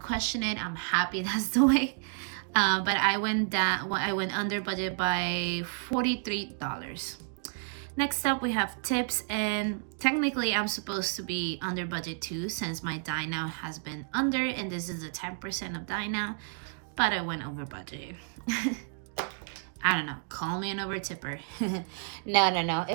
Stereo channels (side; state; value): left; silent; 57 dB below the other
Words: it. I'm happy that's the way. But I went down. I went under budget by $43. Next up, we have tips, and technically I'm supposed to be under budget too, since my dine out has been under, and this is a 10% of dine out, but I went over budget. I don't know, call me an over tipper. No,